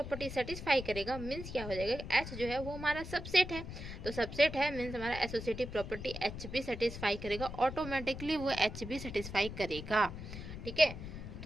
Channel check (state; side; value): noise; left; rumble, 9 dB below the sound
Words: सेटिस्फाई करेगा मीन्स क्या हो जाएगा, एच जो है वो हमारा सबसेट है, तो सबसेट है मीन्स हमारा एसोसिएटिव प्रॉपर्टी एच भी सेटिस्फाई करेगा, ऑटोमेटिकली वो एच भी सेटिस्फाई करेगा, ठीक है।